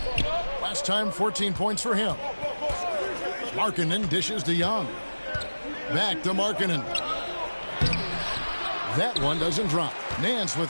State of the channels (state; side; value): inverted; both; correlation -1.00